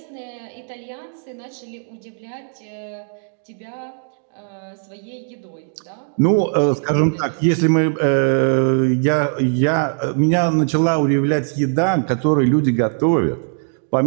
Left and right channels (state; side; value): silent; left; digital silence